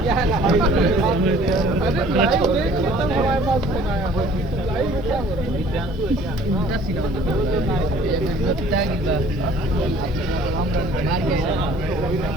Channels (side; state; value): both; normal; correlation 0.53